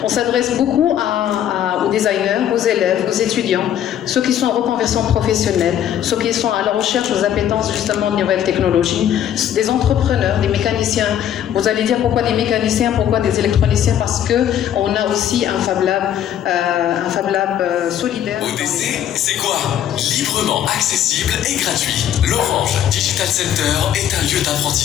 On s'adresse beaucoup aux designers, aux élèves, aux étudiants, ceux qui sont en reconversion professionnelle, ceux qui sont à la recherche aux appétences justement de nouvelles technologies, des entrepreneurs, des mécaniciens. Vous allez dire pourquoi des mécaniciens, pourquoi des électroniciens, parce que on a aussi un Fab Lab solidaire. ODC, c'est quoi? Librement accessible et gratuit. L'Orange Digital Center est un lieu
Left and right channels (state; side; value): quieter; right; 10.4 dB